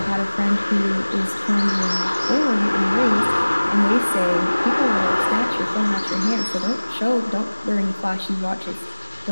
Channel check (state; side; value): inverted; both; correlation -1.00